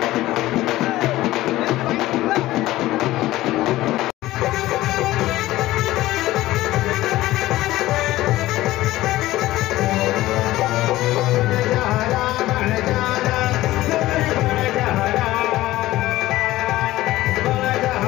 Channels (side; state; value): right; quieter; 16.6 dB